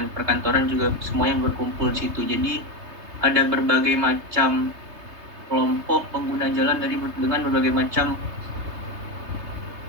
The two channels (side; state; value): left; late; 3.3 ms